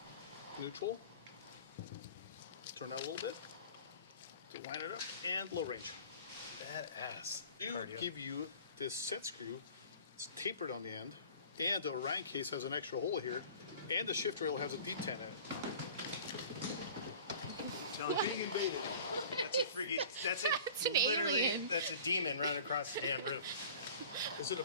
neutral, turn out a little bit to line it up, and low range. Badass. Do Cardio. give you this set screw. It's tapered on the end, and the Orion case has an extra hole here, and the shift rail has a detent in it. Telling you. Being invaded. That's a freaking. That's a That's an literally. alien. That's a demon running across the damn roof. Is it a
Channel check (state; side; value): inverted; both; correlation -0.44